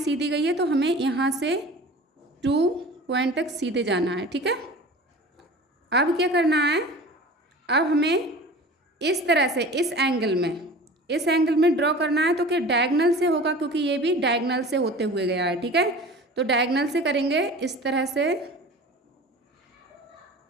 गई है, तो हमें यहाँ से 2 पॉइंट तक सीधे जाना है। ठीक है, अब क्या करना है, अब हमें इस तरह से इस एंगल में ड्रॉ करना है। तो क्या डायगनल से होगा, क्योंकि ये भी डायगनल से होते हुए गया है। ठीक है, तो डायगनल से करेंगे इस तरह से।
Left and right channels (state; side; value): normal; both; correlation 0.39